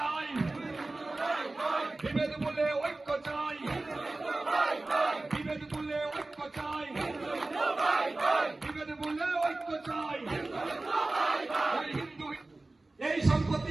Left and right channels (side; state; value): left; quieter; 3.0 dB